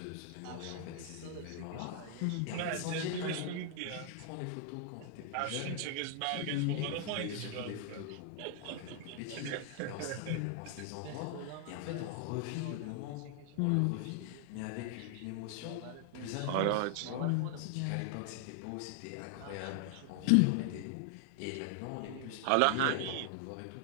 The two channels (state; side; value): different; both; correlation 0.00